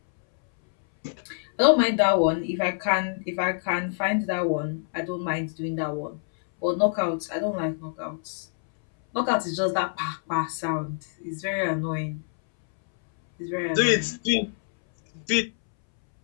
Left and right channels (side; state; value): right; silent; 61 dB below the other